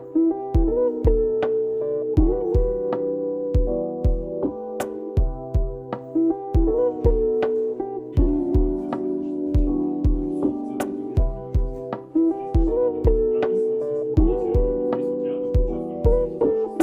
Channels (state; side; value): identical; both; correlation 1.00